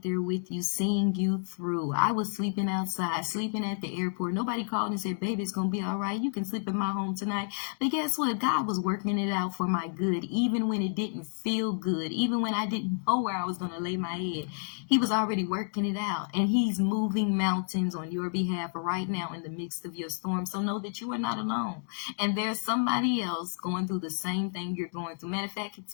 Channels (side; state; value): right; silent; digital silence